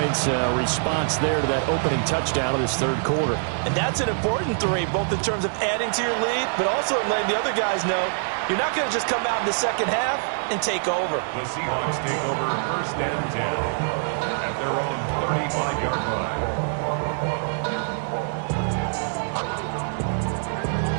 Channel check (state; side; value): silent; left; digital silence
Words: response there to that opening touchdown of this 3rd quarter. And that's an important 3, both in terms of adding to your lead, but also letting the other guys know you're not going to just come out in the second half and take over. The Seahawks take over 1st and 10 at their own 35-yard line.